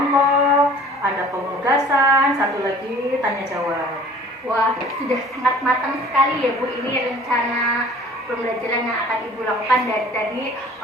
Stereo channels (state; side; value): normal; both; correlation 0.48